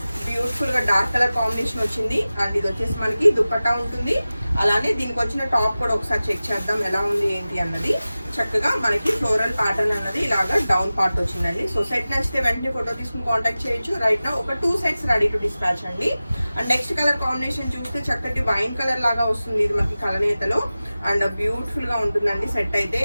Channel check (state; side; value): inverted; both; correlation -0.96